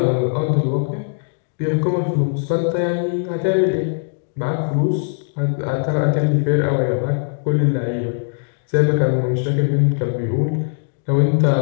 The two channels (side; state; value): right; silent; digital silence